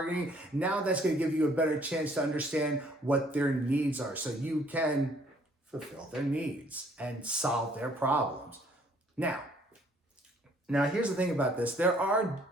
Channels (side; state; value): both; normal; correlation 0.61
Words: Now that's going to give you a better chance to understand what their needs are, so you can fulfill their needs and solve their problems. Now here's the thing about this.